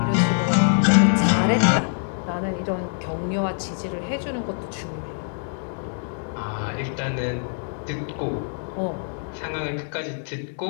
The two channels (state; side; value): silent; right; digital silence